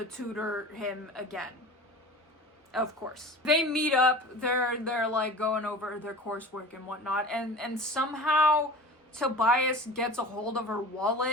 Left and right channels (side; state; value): both; normal; correlation 0.38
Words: tutor him again. Of course. They meet up, they're like going over their coursework and whatnot, and somehow Tobias gets a hold of her